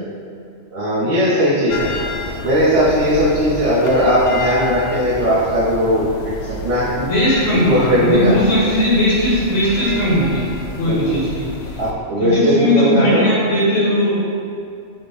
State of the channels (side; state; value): right; late; 3.0 ms